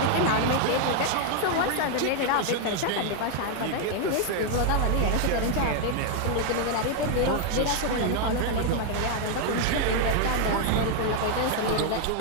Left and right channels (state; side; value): different; both; correlation 0.00